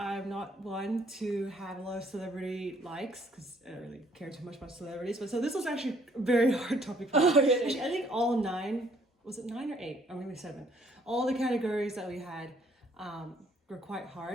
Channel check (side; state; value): both; normal; correlation 0.64